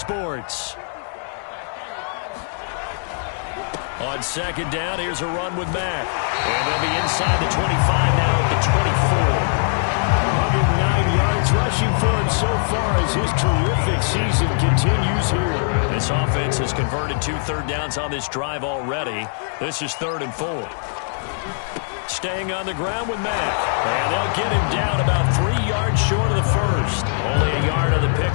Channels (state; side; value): silent; right; digital silence